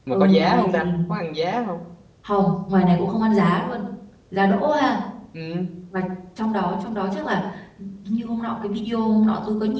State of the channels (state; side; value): identical; both; correlation 1.00